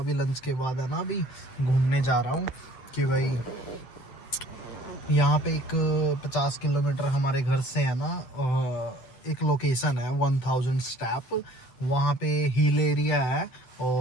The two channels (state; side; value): late; right; 8.0 ms